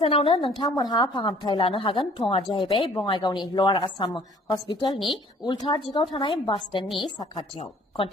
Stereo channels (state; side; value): normal; both; correlation 0.56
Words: नोंथांमोनहा फाहामथाय लानो हागोन। थङा जाहैबाय बङाइगावनि लवार आसाम हस्पिटालनि उल्था दिगाव थानाय बास स्टेन्डनि साखाथियाव।